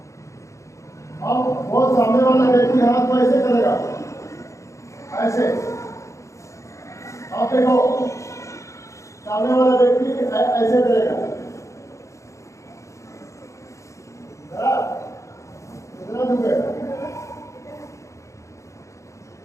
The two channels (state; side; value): late; right; 0.15 ms